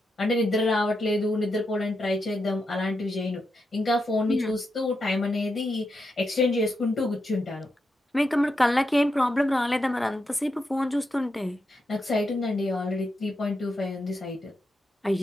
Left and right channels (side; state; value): both; normal; correlation 0.85